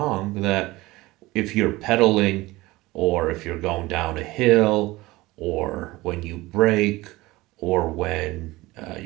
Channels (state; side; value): quieter; left; 19.7 dB